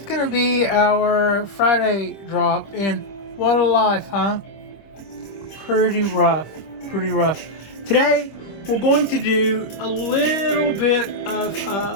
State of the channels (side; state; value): right; late; 26 ms